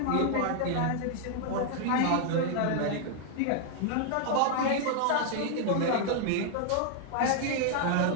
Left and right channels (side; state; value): both; different; correlation 0.00